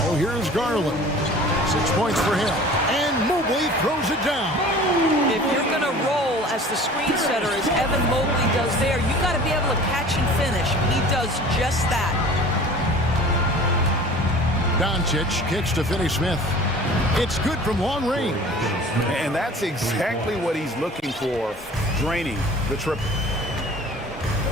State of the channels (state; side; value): normal; both; correlation 0.44